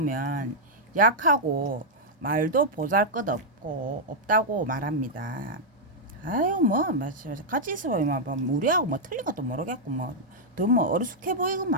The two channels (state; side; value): normal; both; correlation -0.04